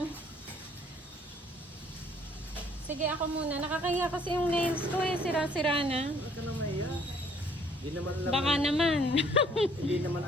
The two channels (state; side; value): normal; both; correlation 0.61